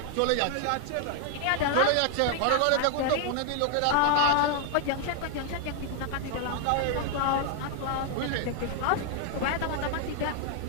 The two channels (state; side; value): different; both; correlation 0.00